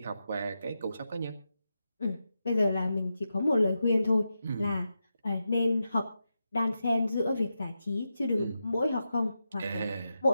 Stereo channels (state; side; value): inverted; both; correlation -0.88